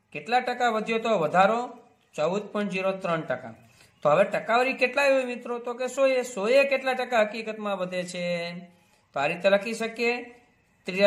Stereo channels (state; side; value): identical; both; correlation 1.00